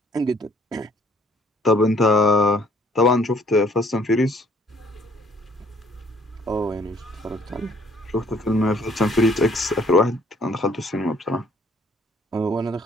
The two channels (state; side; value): normal; both; correlation 0.61